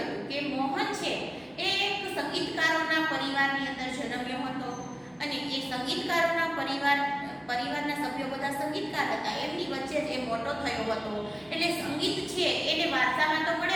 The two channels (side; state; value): right; noise; hum, 30 dB below the sound